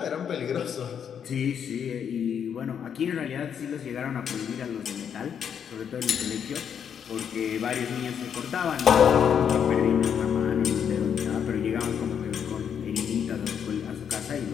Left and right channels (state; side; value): quieter; right; 8.0 dB